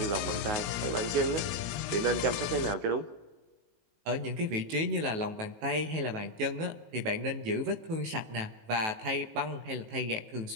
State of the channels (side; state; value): left; late; 19 ms